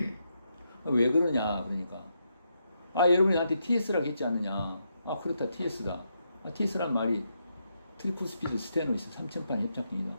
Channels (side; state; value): both; inverted; correlation -0.81